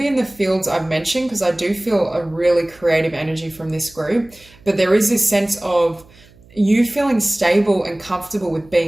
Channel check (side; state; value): right; noise; hum, 26 dB below the sound